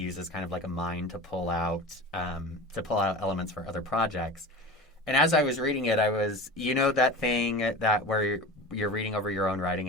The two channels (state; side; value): normal; both; correlation 0.32